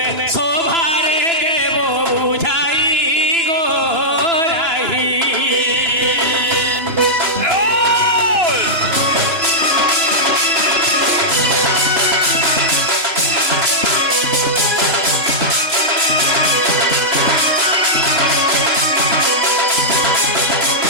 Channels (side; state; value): left; late; 3.0 ms